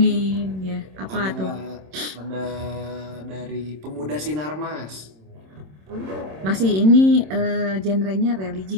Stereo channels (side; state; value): left; late; 26 ms